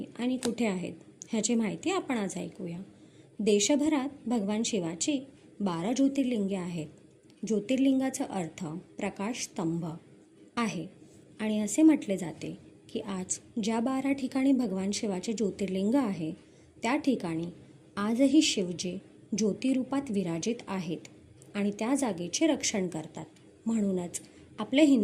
आणि कुठे आहेत ह्याची माहिती आपण आज ऐकूया. देशभरात भगवान शिवाची 12 ज्योतिर्लिंगे आहेत. ज्योतिर्लिंगाचा अर्थ प्रकाश स्तंभ आहे आणि असे म्हटले जाते की आज ज्या 12 ठिकाणी भगवान शिवाचे ज्योतिर्लिंग आहे त्या ठिकाणी आजही शिवजी ज्योतिरूपात विराजित आहेत आणि त्या जागेचे रक्षण करतात. म्हणूनच आपल्या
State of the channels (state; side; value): identical; both; correlation 1.00